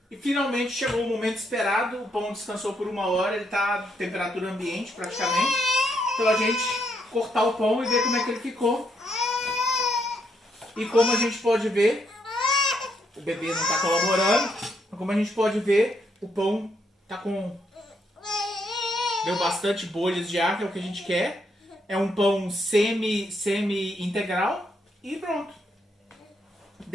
E finalmente chegou o momento esperado. O pão descansou por 1 hora. Ele está a temperatura ambiente praticamente. Então a gente cortar o pão e ver como é que ele ficou. E como a gente pode ver, o bebê não está colaborando, mas como a gente pode ver, o pão está com... Deu bastante bolhas de ar, que é o que a gente quer. É um pão semi-integral e pronto.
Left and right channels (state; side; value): normal; both; correlation 0.76